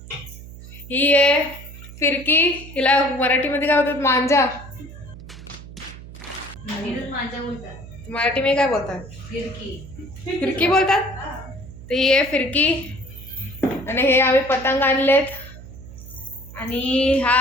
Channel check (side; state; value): right; noise; hum, 15 dB below the sound